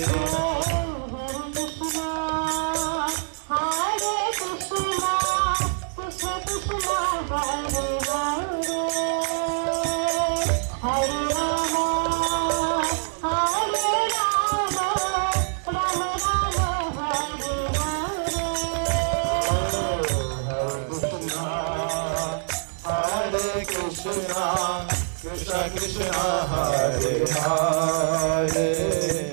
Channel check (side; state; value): left; silent; digital silence